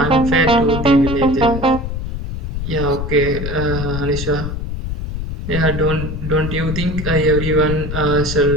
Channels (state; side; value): noise; left; rumble, 5 dB below the sound